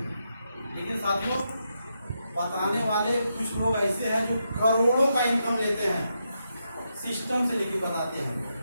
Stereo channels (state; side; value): inverted; both; correlation -0.83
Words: लेकिन साथियों, बताने वाले कुछ लोग ऐसे हैं जो करोड़ों का इनकम लेते हैं, सिस्टम से लेके बताते हैं।